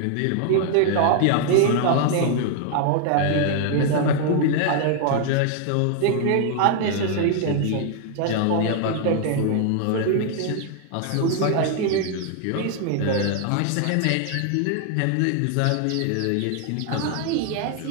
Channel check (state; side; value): different; both; correlation 0.00